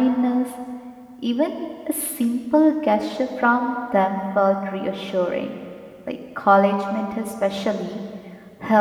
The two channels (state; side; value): identical; both; correlation 1.00